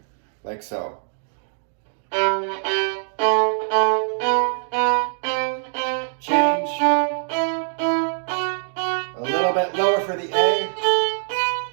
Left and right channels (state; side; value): silent; left; digital silence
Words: like so. Change. A little bit lower for the A.